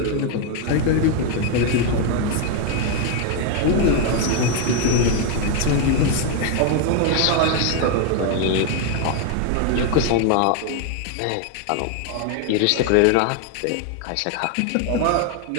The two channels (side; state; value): both; different; correlation 0.01